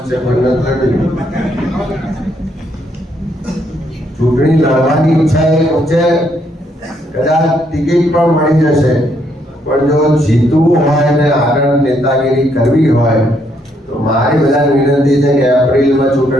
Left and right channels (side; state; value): both; normal; correlation 0.73